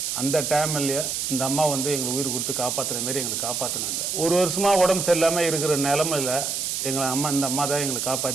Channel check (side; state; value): right; noise; hiss, 1 dB below the sound